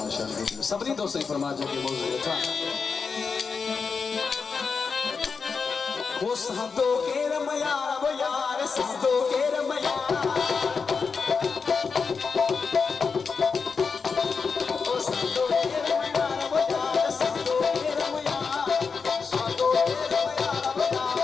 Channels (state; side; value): quieter; right; 5.3 dB